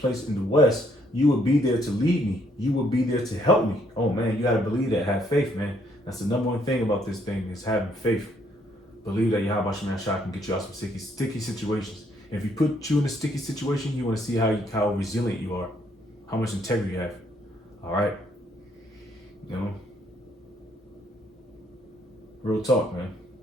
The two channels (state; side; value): normal; both; correlation 0.69